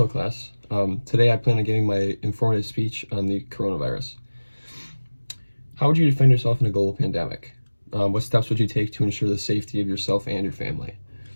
class. Today I plan on giving my informative speech on the coronavirus. How would you defend yourself in a global pandemic? What steps would you take to ensure the safety of yourself and your family?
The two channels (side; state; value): both; inverted; correlation -1.00